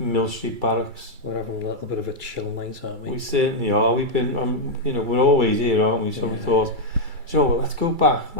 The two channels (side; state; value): left; late; 2.3 ms